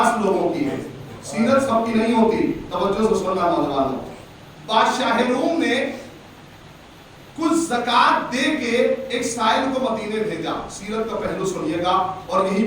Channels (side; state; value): both; identical; correlation 1.00